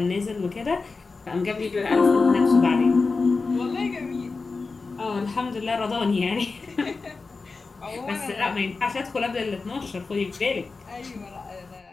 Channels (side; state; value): right; quieter; 4.1 dB